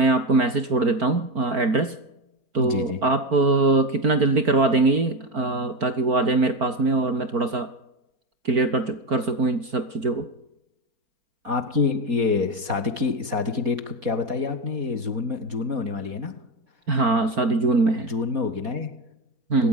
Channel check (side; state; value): left; late; 4.2 ms